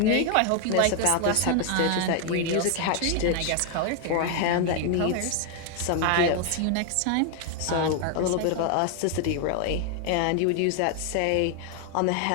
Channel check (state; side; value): different; both; correlation 0.00